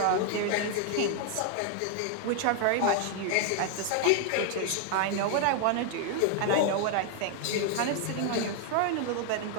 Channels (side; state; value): both; different; correlation 0.00